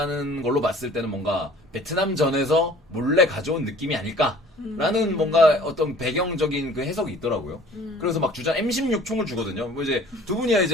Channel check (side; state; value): both; normal; correlation 0.50